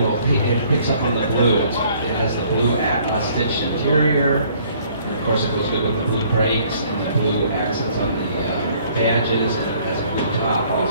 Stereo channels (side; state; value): both; inverted; correlation -0.59